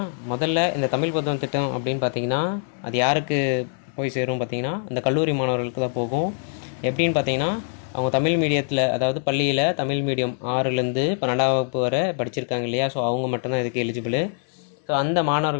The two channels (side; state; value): right; silent; 57 dB below the other